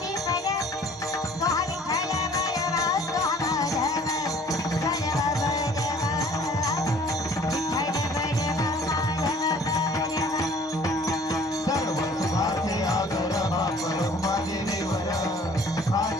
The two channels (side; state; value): both; normal; correlation 0.53